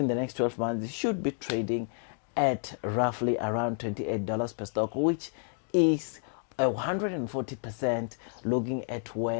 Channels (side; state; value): right; silent; 58 dB below the other